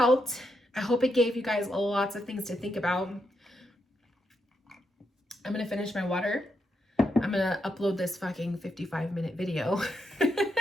I hope it gave you guys lots of things to think about. I'm going to finish my water. I'm going to upload this fucking 55-minute video.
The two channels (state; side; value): normal; both; correlation 0.82